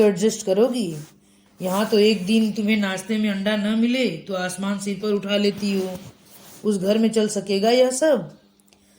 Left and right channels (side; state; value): both; identical; correlation 1.00